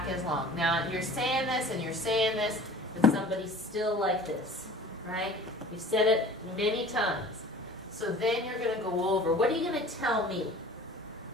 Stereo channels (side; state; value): both; normal; correlation 0.44